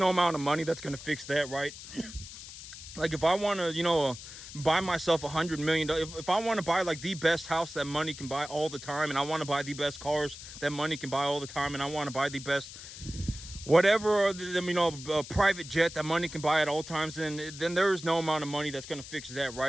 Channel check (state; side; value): noise; left; hiss, 13 dB below the sound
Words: amount of money that's going to fix that, right? Like, if I want to, buy myself $100 million, if I want to buy like the best house that money can buy all the time, and I want to buy the best cars that money can buy all the time, and I want to buy the best whatever, a private jet that money can buy at all times, then there is no amount of money that's going to fix that,